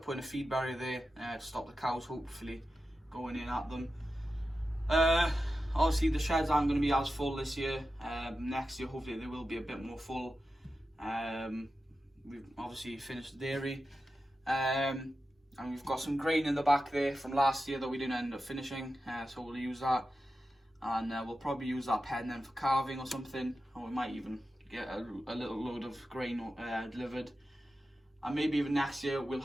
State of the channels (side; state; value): both; normal; correlation 0.92